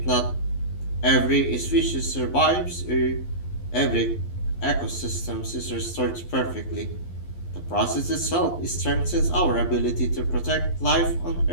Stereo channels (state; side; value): late; right; 11 ms